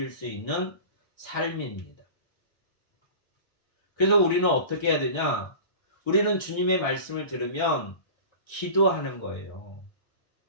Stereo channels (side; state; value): right; late; 1.6 ms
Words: 수 있는 삶입니다. 그래서 우리는 어떻게 해야 되냐? 우리는 주님의 말씀을 들으면 기도하는 거예요.